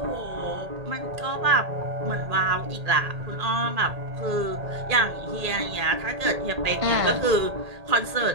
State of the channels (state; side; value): late; left; 1.8 ms